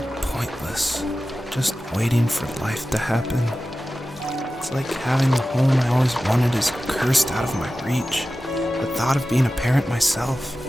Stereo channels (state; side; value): normal; both; correlation 0.94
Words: pointless. Just waiting for life to happen. It's like having the home I always wanted is cursed out of my reach. The thought of being a parent myself.